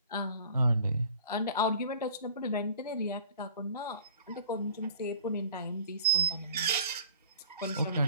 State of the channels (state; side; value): inverted; both; correlation -0.51